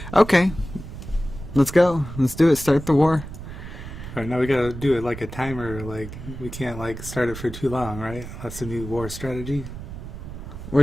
Okay. Let's go. Let's do it. Start the war. All right, now we gotta do it like a timer. Like we can't like start it for too long, right? That's the new war strategy.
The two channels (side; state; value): right; noise; rumble, 11 dB below the sound